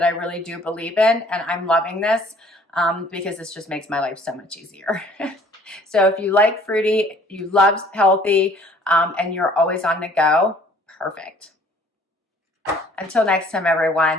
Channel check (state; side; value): normal; both; correlation 0.55